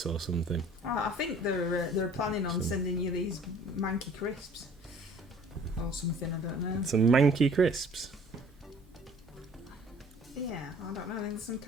or something. I think they're planning on sending you these manky crisps or something. I don't know. Some manky crisps. Yeah, I don't know. I think some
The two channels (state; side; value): normal; both; correlation 0.52